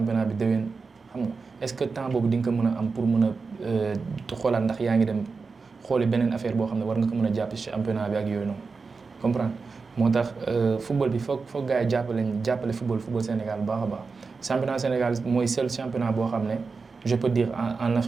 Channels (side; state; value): left; quieter; 4.6 dB